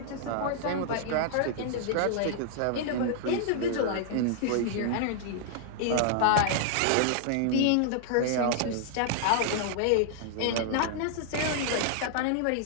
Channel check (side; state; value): both; different; correlation -0.01